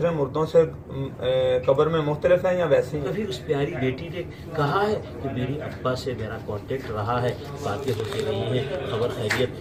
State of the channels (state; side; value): identical; both; correlation 1.00